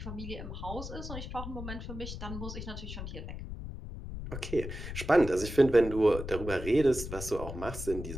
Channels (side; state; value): left; noise; rumble, 8 dB below the sound